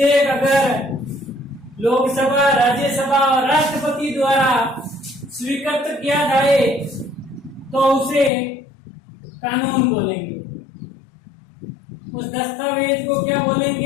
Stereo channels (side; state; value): right; drops out; at 8.3 s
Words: अगर लोकसभा, राज्यसभा और राष्ट्रपति द्वारा स्वीकृत किया जाए तो उसे कानून बोलेंगे। उस दस्तावेज को क्या